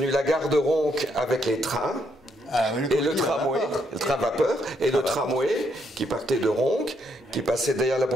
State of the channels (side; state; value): both; normal; correlation 0.75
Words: la gare de Ronc avec les trains. Et le tramway, le train vapeur, et le tramway qui partait de Ronc, qui passait derrière la